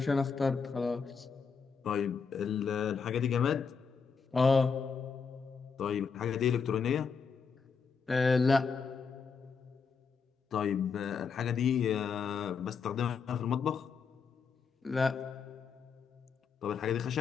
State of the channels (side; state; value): right; quieter; 5.7 dB